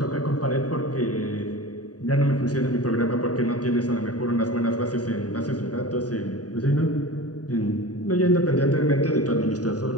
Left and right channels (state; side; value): late; right; 0.68 ms